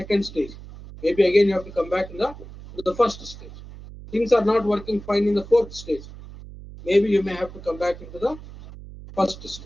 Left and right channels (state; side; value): noise; right; hum, 15 dB below the sound